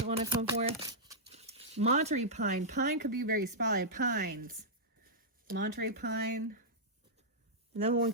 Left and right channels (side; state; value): both; normal; correlation -0.10